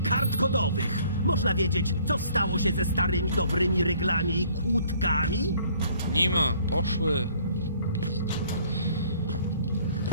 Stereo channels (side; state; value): both; inverted; correlation -0.59